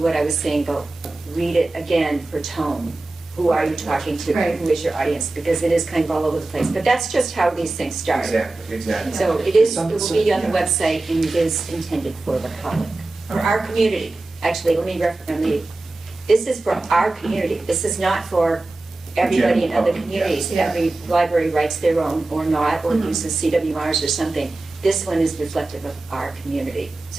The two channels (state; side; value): quieter; left; 3.0 dB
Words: I was saying about read it again for tone. Who are you talking to? Right. Who is your audience? Because it is kind of all over the place, but that's just how these things start. Exactly. So it will be on the website and it is intended for the public, for our community. Actually, this is for our community. This is not for everybody in other General public, communities. yeah. Every library writes their own or not, or uses CWRs or something. This one is reflective of our community,